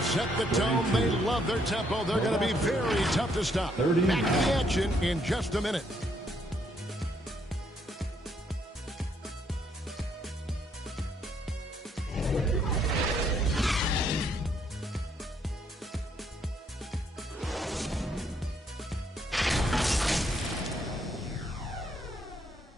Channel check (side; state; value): both; normal; correlation 0.71